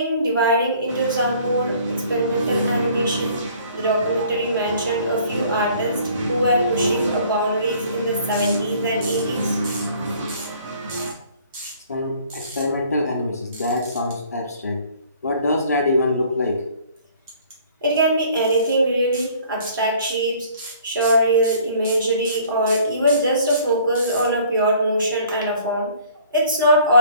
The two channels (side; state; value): both; inverted; correlation -0.55